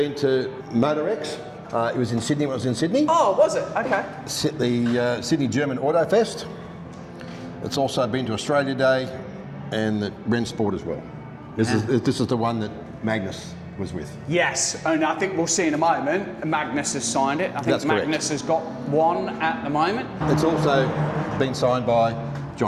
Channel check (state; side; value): identical; both; correlation 1.00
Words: to MotorX. It was in Sydney when I was in Sydney. Oh, was it? Okay. The Sydney German Auto Fest. It's also been to Australia Day and the Rensport as well. This is the one that Magnus was with. Yes, and I think we'll see in a moment, Magnus has signed it. I think That's Magnus has got one at the moment. It's also been signed by